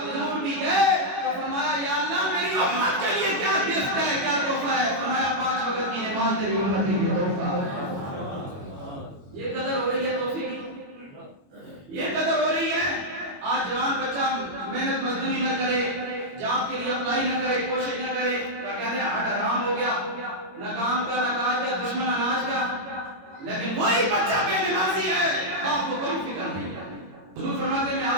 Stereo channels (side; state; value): left; late; 21 ms